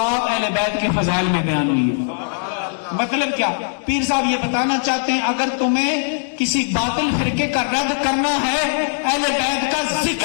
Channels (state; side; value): silent; right; digital silence